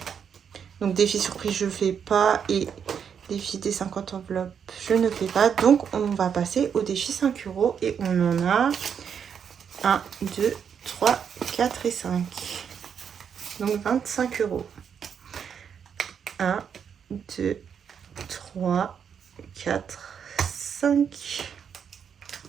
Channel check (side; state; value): left; quieter; 7.5 dB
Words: Donc défi surprise, je fais pas. Et défi des 50 enveloppes, je ne fais pas. Donc on va passer au défi 5 € et on en a 1, 2, 3, 4 et 5. Donc 25 €. 1, 2, 3, 4, 5.